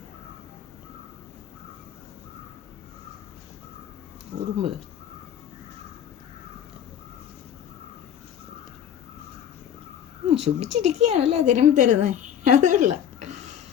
ഉറുമ്പ് സുഖിച്ചിരിക്കുകയാണല്ലേ തിരുമ്പി തരുന്നത്. അതല്ല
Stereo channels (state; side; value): quieter; right; 9.5 dB